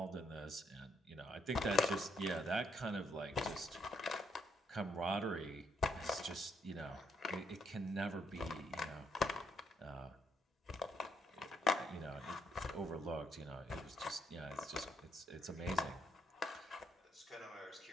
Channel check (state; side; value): normal; both; correlation 0.74